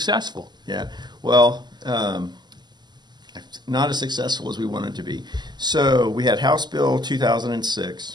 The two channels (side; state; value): left; late; 0.21 ms